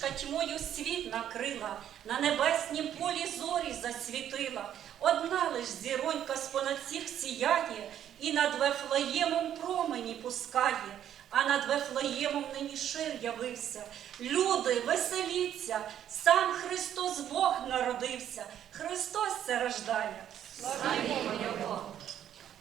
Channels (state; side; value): quieter; left; 10.4 dB